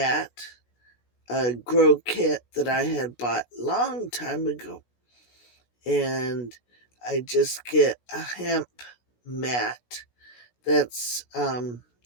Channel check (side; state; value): right; late; 16 ms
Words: a grow kit that I had bought long time ago, and I just get a hemp mat that's